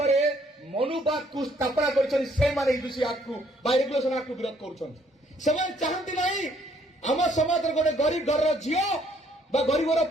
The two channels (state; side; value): normal; both; correlation 0.66